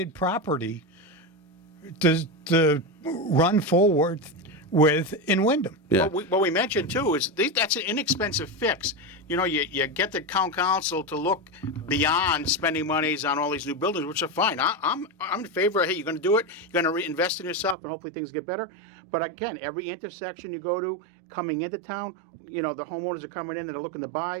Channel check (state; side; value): drops out; left; at 17.8 s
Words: property to run forward with in Wyndham. Yeah. What we mentioned too is that's an inexpensive fix. You know, you get the town council to look beyond spending monies on all these new buildings, which are fine. I'm in favor of, hey, you're going to do it, you're going to reinvest in yourself, and hopefully things get better. But again, every intersection you go to, coming into town, you know, the homeowners are coming in and they're looking to